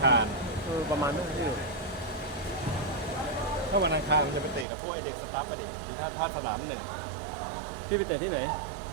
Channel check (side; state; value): left; drops out; at 4.7 s